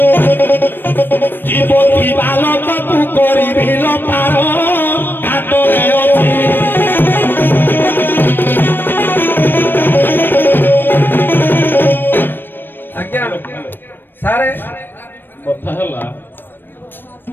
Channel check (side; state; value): right; late; 0.095 ms